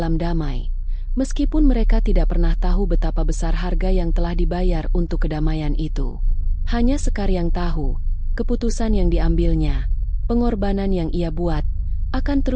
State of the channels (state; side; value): identical; both; correlation 1.00